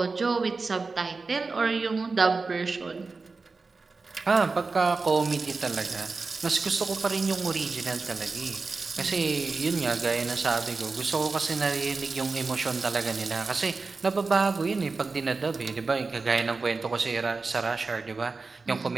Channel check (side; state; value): left; quieter; 4.1 dB